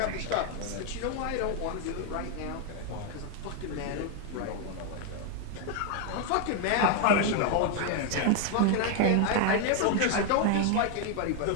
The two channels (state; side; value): different; both; correlation 0.00